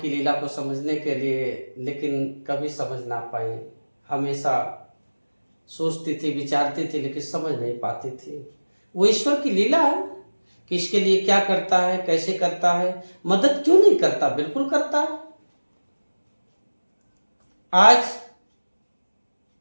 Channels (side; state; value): both; inverted; correlation -1.00